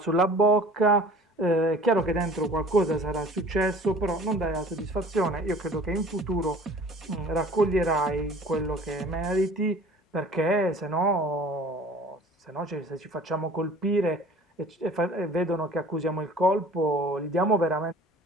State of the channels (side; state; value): both; normal; correlation 0.47